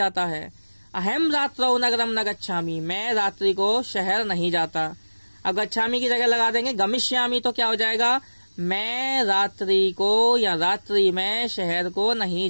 है। अहम रात्रौ नगरम न गच्छामि, मैं रात्रि को शहर नहीं जाता। अब गच्छामि की जगह लगा देंगे गमिष्यामि, तो क्या हो जाएगा, मैं रात्रि को या रात्रि में शहर को नहीं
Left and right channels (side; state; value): both; inverted; correlation -1.00